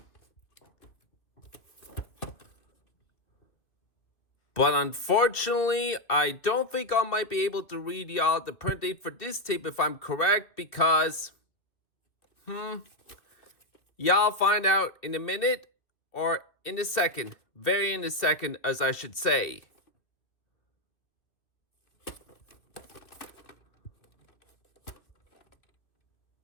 But unfortunately, I don't think I might be able to read y'all the print date for this tape if I'm correct, because y'all find out in a minute, or in a second. Very in a second, as I should say.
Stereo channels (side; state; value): right; late; 2.5 ms